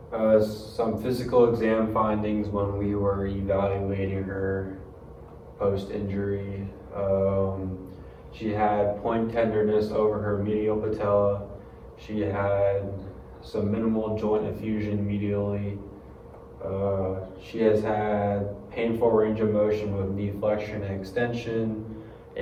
Some physical exam findings when we were evaluating her post-injury. She had point tenderness over her medial patella. She had some minimal joint effusion medially. She has had painful range of motion with knee flexion and extension,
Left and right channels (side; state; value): both; identical; correlation 1.00